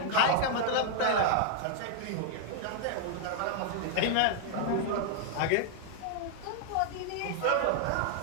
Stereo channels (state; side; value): different; both; correlation 0.00